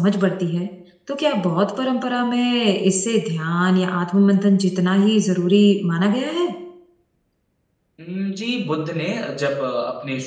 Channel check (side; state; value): both; identical; correlation 1.00